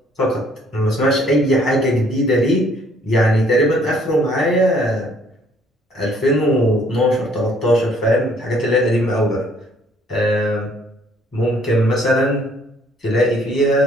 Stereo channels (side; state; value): both; normal; correlation 0.62